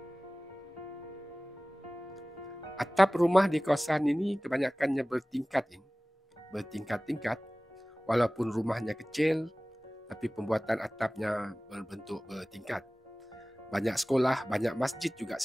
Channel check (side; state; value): both; normal; correlation 0.98